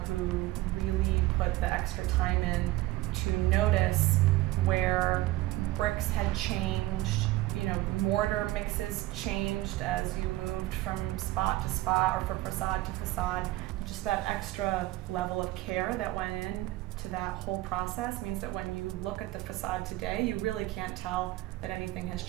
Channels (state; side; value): quieter; left; 17.5 dB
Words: who really put the extra time in to notice where bricks had changed, mortar mixes changed as you moved from spot to spot or from facade to facade. Just that extra level of care that went in to that whole process means that when you look at the facade today, you really can't tell that anything has